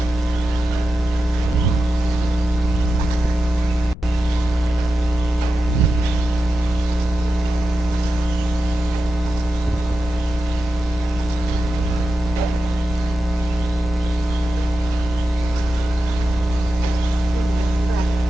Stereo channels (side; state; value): left; noise; rumble, 14 dB below the sound